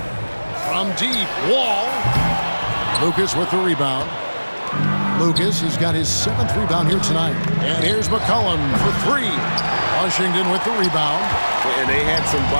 From deep, Wall. Lucas with the rebound. Lucas has got his 7th rebound here tonight. And here's McCollum for 3. Washington with the rebound. And they had some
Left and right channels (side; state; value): both; inverted; correlation -1.00